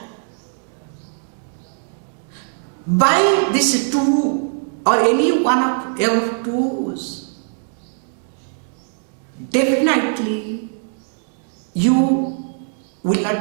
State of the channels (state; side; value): silent; left; 62 dB below the other